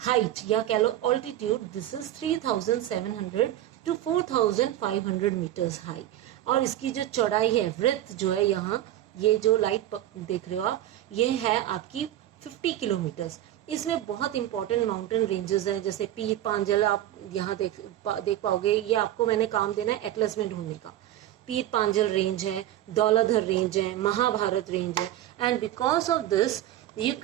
या कह लो altitude, this is 3700 to 4500 metres high और इसकी जो चौड़ाई है वृत्त जो है यहाँ ये जो लाइट देख रहे हो आप ये है आपकी 50 किलोमीटर्स। इसमें बहुत इंपॉर्टेंट माउंटेन रेंजेस हैं जैसे पीर पांजल आप यहाँ देख पाओगे, ये आपको मैंने काम देना है एटलस में ढूंढने का। पीर पांजल रेंज है, दौलाधर रेंज है, महाभारत रेंज है and because of this you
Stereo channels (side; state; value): left; quieter; 13.0 dB